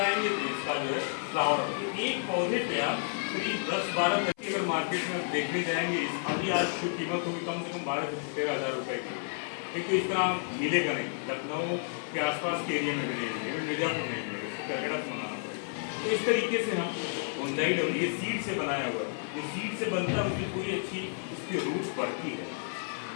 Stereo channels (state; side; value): silent; right; 55 dB below the other